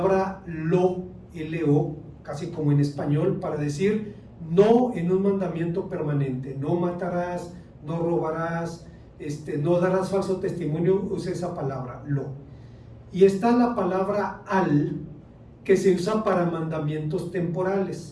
lo, L-O, casi como en español, para decir no en un mandamiento permanente. No matarás, no robarás, no darás falso testimonio, usa esa palabra, lo. Y está la palabra al, que se usa para mandamientos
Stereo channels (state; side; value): identical; both; correlation 1.00